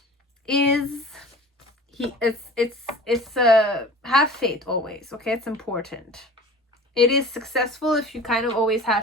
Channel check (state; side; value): normal; both; correlation 0.41